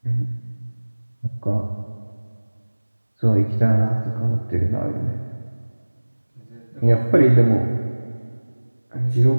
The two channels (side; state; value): both; inverted; correlation -1.00